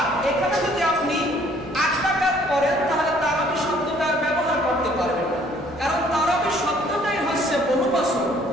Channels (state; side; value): normal; both; correlation 0.60